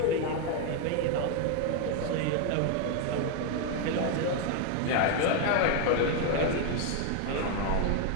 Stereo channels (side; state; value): both; different; correlation 0.01